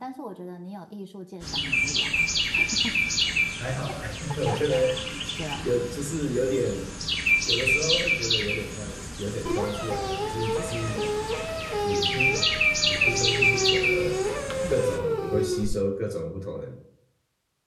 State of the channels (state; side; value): identical; both; correlation 1.00